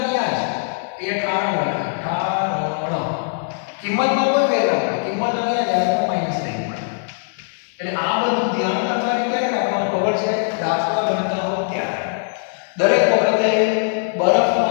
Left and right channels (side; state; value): right; silent; digital silence